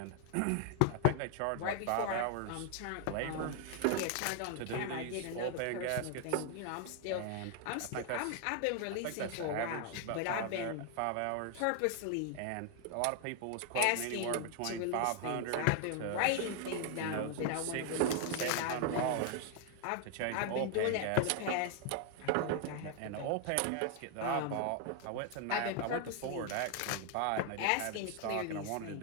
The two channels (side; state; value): both; different; correlation 0.00